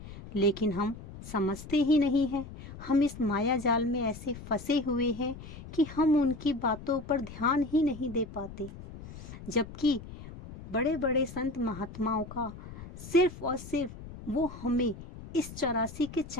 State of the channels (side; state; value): left; noise; rumble, 14 dB below the sound